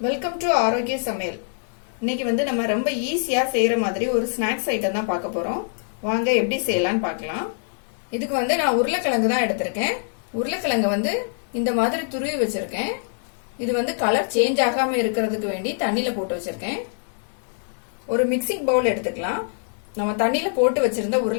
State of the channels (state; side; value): silent; right; digital silence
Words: வெல்கம் டு ஆரோக்கிய சமையல். இன்னைக்கு வந்து நம்ம ரொம்ப ஈஸியா செய்யற மாதிரி ஒரு ஸ்நாக்ஸ் ஐட்டம் தான் பார்க்க போறோம். வாங்க எப்படி செய்யலாம்னு பார்க்கலாம். இதுக்கு வந்து நான் உருளைக்கிழங்கு தான் எடுத்திருக்கேன். உருளைக்கிழங்கு வந்து இந்த மாதிரி துருவி வச்சிருக்கேன். இது வந்து கலர் சேஞ்ச் ஆகாம இருக்கிறதுக்கு வேண்டி தண்ணியில போட்டு வச்சிருக்கேன். ஒரு மிக்சிங் பவுல் எடுத்துக்கலாம். நம்ம தண்ணியில போட்டு வச்சிருந்த